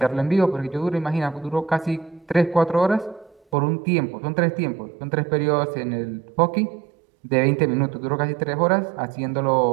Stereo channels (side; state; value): left; drops out; at 3.4 s